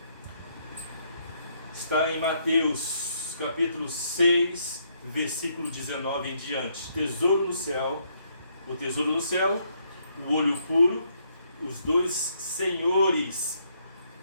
Está em Mateus capítulo 6, versículo 19 em diante. Tesouro no céu, o tesouro no céu, o olho puro os dois senhores,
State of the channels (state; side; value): inverted; both; correlation -0.73